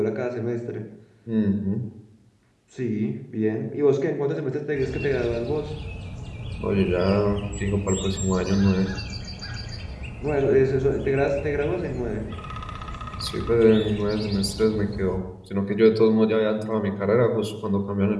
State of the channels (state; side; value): identical; both; correlation 1.00